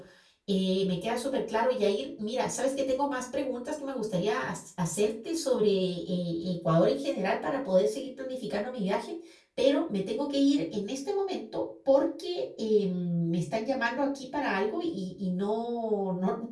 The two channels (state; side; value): identical; both; correlation 1.00